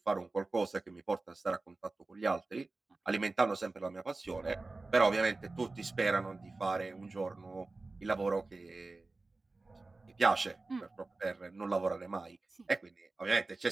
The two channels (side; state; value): left; quieter; 3.4 dB